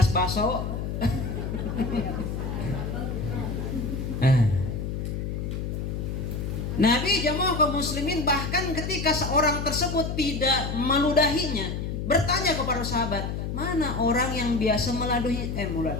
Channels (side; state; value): left; noise; hum, 3 dB below the sound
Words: baso. Nabi jamaah kaum muslimin bahkan ketika seorang tersebut tidak meludahinya, bertanya kepada sahabat, mana orang yang biasa meladuhi